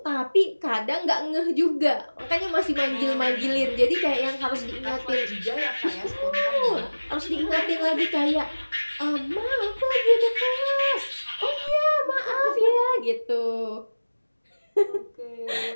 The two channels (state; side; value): inverted; both; correlation -1.00